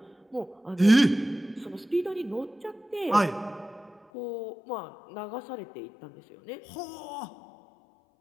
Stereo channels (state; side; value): drops out; right; at 4.0 s